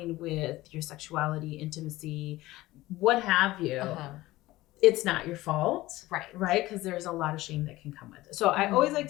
with your sexuality, intimacy, what have you, it's not your fault, right? Because there's a lot of shame that can come with it. So I always like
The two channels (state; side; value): quieter; right; 17.8 dB